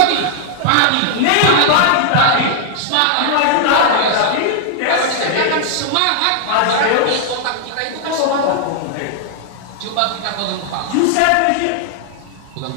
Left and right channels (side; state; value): both; different; correlation -0.01